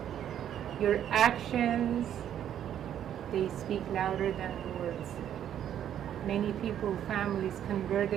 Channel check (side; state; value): left; quieter; 10.2 dB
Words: your actions, they speak louder than words. Many people, families